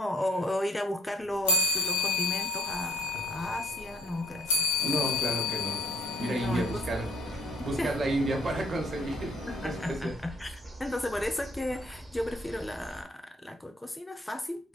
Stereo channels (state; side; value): normal; both; correlation 0.60